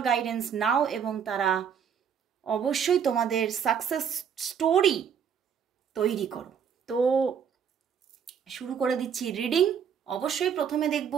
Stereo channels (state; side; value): quieter; left; 7.6 dB